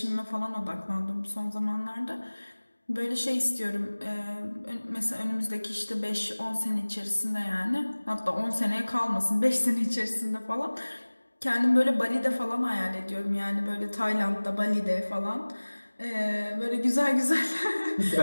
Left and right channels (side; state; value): both; inverted; correlation -1.00